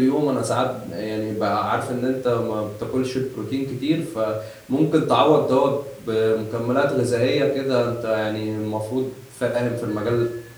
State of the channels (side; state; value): both; identical; correlation 1.00